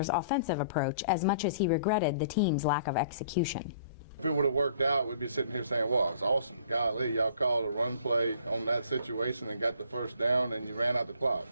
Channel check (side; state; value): both; inverted; correlation -0.57